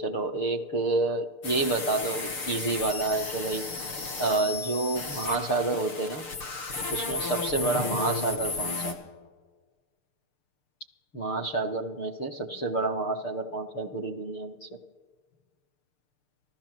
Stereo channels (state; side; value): late; right; 6.7 ms